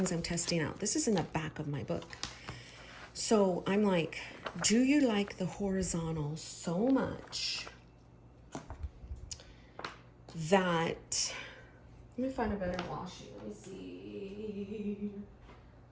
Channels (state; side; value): identical; both; correlation 1.00